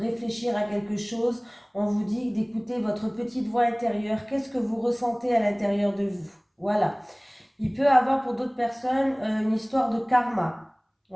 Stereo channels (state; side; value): identical; both; correlation 1.00